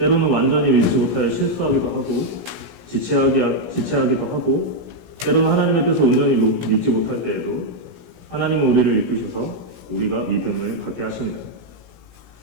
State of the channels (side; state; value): left; late; 17 ms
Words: 완전히 믿지 못하여 실수하기도 하고 지체하기도 하고 때로는 하나님의 뜻을 온전히 믿지 못할 때에도 하나님은 우리를 이끄셔서 우리가 믿음을 갖게 하십니다.